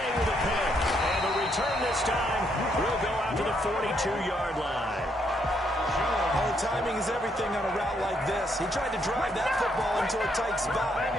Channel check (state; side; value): normal; both; correlation 0.74